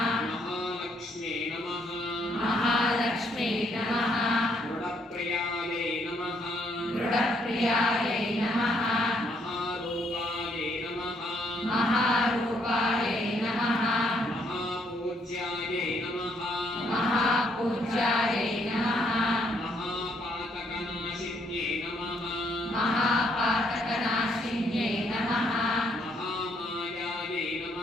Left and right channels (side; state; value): both; normal; correlation 0.71